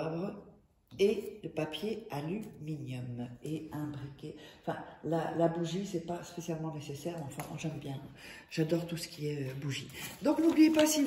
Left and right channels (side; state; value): both; identical; correlation 1.00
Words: et de papier aluminium et un briquet. Enfin, la bougie, c'est pas spécialement nécessaire, mais enfin, j'aime bien. J'adore tout ce qui est bougie. Donc, n'oubliez pas, si